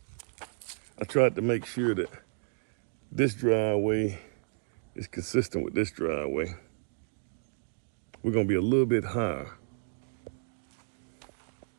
I tried to make sure that this driveway is consistent with this driveway. We're gonna be a little bit higher.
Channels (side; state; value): left; silent; 57 dB below the other